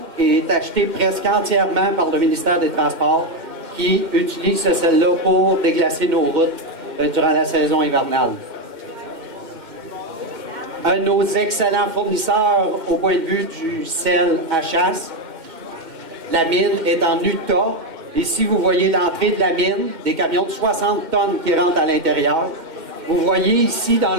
est acheté presque entièrement par le ministère des Transports, qui utilise ce sel-là pour déglacer nos routes durant la saison hivernale. Un de nos excellents fournisseurs au point de vue du sel à chasse, la mine est en Utah. Ici, vous voyez l'entrée de la mine, des camions de 60 tonnes qui rentrent à l'intérieur. Vous voyez ici, dans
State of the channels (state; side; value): late; left; 2.1 ms